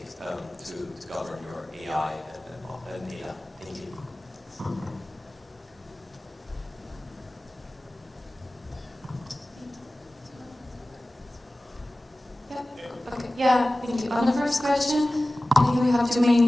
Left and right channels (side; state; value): both; normal; correlation 0.97